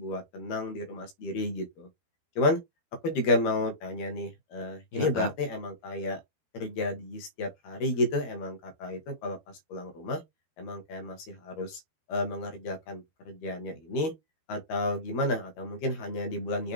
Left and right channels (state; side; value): late; right; 13 ms